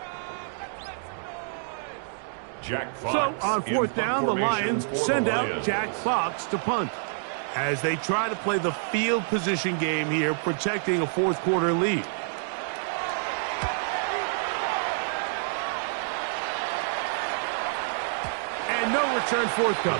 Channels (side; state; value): left; silent; digital silence